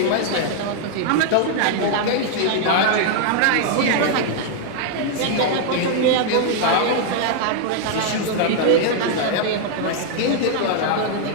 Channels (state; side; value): different; both; correlation 0.00